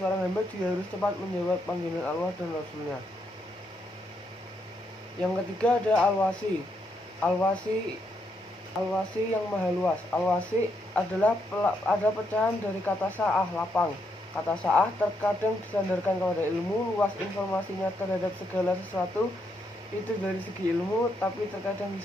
seorang hamba dia harus cepat menjawab panggilan Allah dan Rasulnya. Yang ketiga ada Al-Wasi. Al-Wasi yang maha luas. Al-Wasi adalah ada pecahan dari kata sa'ah, lapang. Kata sa'ah terkadang disandarkan kepada ilmu, luas informasinya terhadap segala sesuatu itu dari segi ilmu, tapi terkadang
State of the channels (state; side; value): normal; both; correlation 0.78